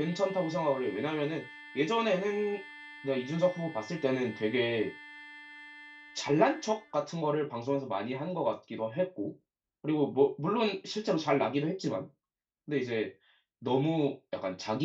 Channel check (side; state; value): both; identical; correlation 1.00